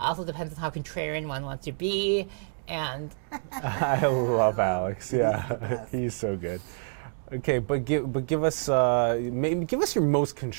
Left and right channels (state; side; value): silent; left; digital silence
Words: depends on how contrarian one wants to be, and... I love Alex, yeah. He's so good. Okay, but give us give us your most